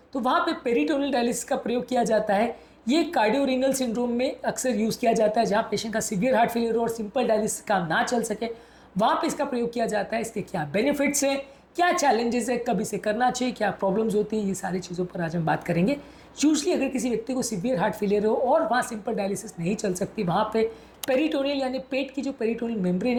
तो वहाँ पे पेरिटोनियल डायलिसिस का प्रयोग किया जाता है। ये कार्डियोरेनल सिंड्रोम में अक्सर यूज़ किया जाता है, जहाँ पेशेंट का सीवियर हार्ट फेलियर हो और सिंपल डायलिसिस काम ना चल सके, वहाँ पे इसका प्रयोग किया जाता है। इसके क्या बेनिफिट्स हैं, क्या चैलेंजेस है, कब इसे करना चाहिए, क्या प्रॉब्लम्स होती हैं, ये सारी चीज़ों पर आज हम बात करेंगे। यूजली अगर किसी व्यक्ति को सीवियर हार्ट फेलियर हो और वहाँ सिंपल डायलिसिस नहीं चल सकती, वहाँ पे पेरिटोनियल यानी पेट की जो पेरिटोनियल मेम्ब्रेन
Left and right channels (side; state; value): both; identical; correlation 1.00